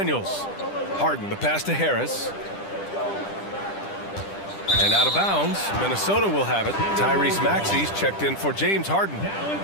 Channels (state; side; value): late; right; 10 ms